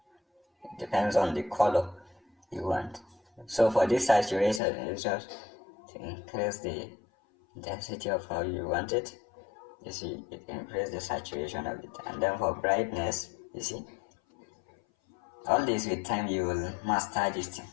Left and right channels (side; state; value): right; drops out; at 4.6 s